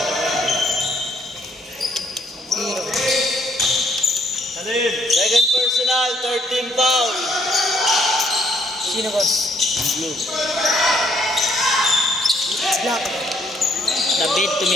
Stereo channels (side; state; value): both; normal; correlation 0.68